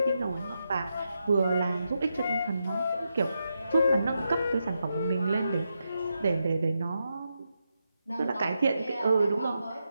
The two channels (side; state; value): both; inverted; correlation -0.85